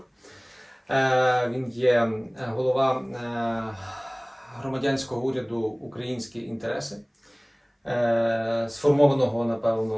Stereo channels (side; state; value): both; identical; correlation 1.00